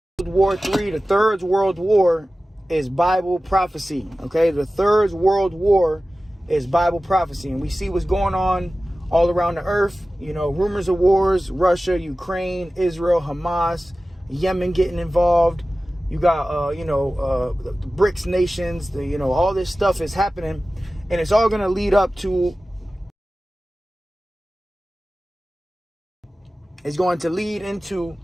World War III, the Third World War, is Bible prophecy. Okay, the Third World War is Bible prophecy, and we see what's going on all around the earth. You know, rumors of wars: Russia, Ukraine, Israel, Hamas, Yemen getting involved. You got, the BRICS nations. All this stuff is happening, and it's all going to lead up to. It's going to lead into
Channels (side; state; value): both; normal; correlation 0.96